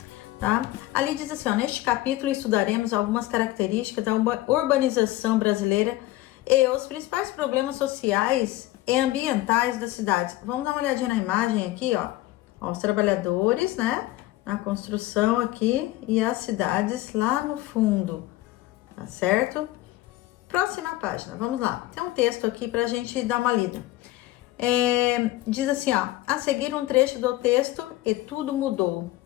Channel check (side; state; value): right; quieter; 17.0 dB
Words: tá? Ali diz assim, neste capítulo estudaremos algumas características da urbanização brasileira e os principais problemas sociais e ambientais das cidades. Vamos dar uma olhadinha na imagem aqui, os trabalhadores, né? Na construção aqui e as cidades lá no fundo. Tá certo? Próxima página, vamos lá. Tem um texto aqui pra gente dar uma lida. Diz assim, a seguir um trecho do texto e tudo mudou.